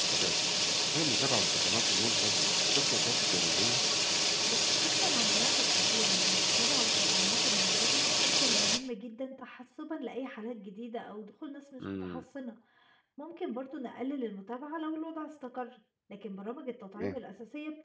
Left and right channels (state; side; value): identical; both; correlation 1.00